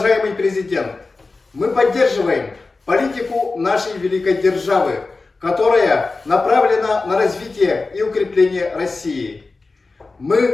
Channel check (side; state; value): right; quieter; 3.7 dB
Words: президент, мы поддерживаем политику нашей великой державы, которая направлена на развитие и укрепление России.